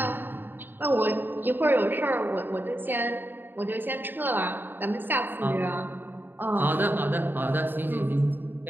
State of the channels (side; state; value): left; late; 0.094 ms